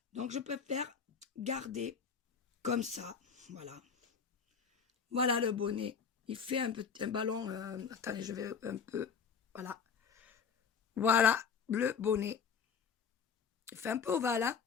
Donc, je préfère garder comme ça. Voilà. Voilà le bonnet. Il fait un ballon. Attendez, je vais un peu. Voilà. Voilà le bonnet. Il fait un peu ovale. Hein.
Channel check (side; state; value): right; quieter; 6.5 dB